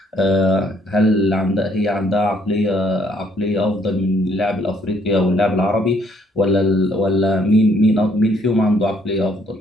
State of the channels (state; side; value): normal; both; correlation 0.66